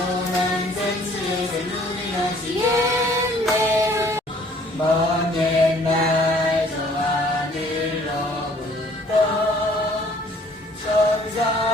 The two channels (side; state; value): both; normal; correlation 0.57